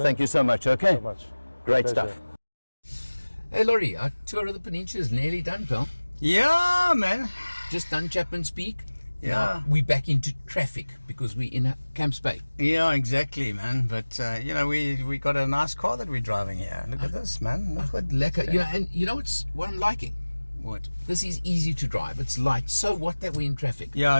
thank you so much. Okay, so much. great Pleasure. stuff. Hey Laurie, our tour of the peninsula is nearly done, pal. Yeah, man. Just done Chapman's Peak. Yeah. Now we're back into traffic because we're in Camps Bay. Yeah, exactly, man. But you know, we got a nice car that we're driving here. Look at this, man. Look what Lekker. You know, and you know what I'm liking? What? This is easy to drive. It's light. So what that we're in traffic? Yeah,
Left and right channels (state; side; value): inverted; both; correlation -1.00